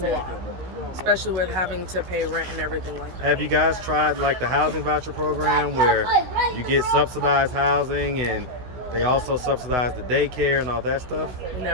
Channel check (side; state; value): left; late; 16 ms